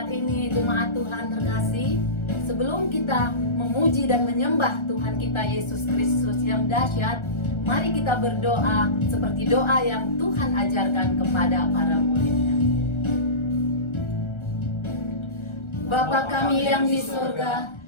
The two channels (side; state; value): right; late; 1.3 ms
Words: ini jemaat Tuhan terkasih, sebelum kita memuji dan menyembah Tuhan kita Yesus Kristus yang dahsyat, mari kita berdoa seperti doa yang Tuhan ajarkan kepada para muridnya. Bapa kami yang di surga,